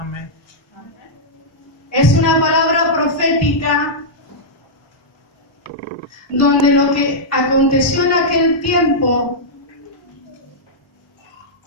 Es una palabra profética donde lo que aconteció en aquel tiempo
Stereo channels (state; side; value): normal; both; correlation -0.09